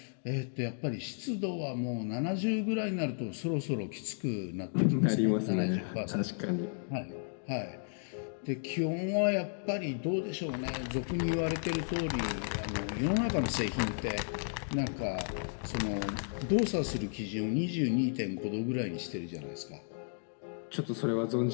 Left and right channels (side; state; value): right; silent; digital silence